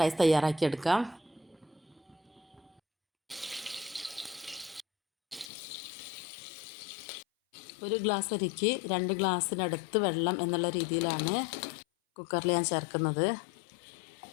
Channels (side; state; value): right; drops out; at 5.5 s